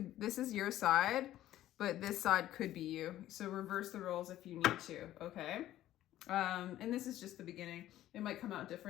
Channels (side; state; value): right; quieter; 13.6 dB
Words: is your side, but this side could be you. So reverse the roles if you need to, okay? And this is just the beginning. It might come out